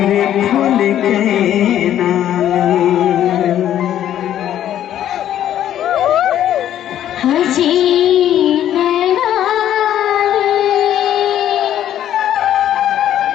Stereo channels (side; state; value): right; quieter; 11.3 dB